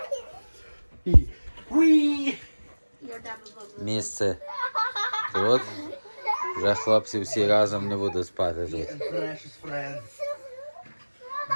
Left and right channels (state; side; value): inverted; both; correlation -1.00